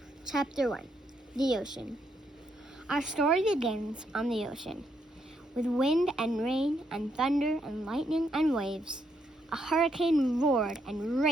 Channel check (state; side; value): normal; both; correlation 0.76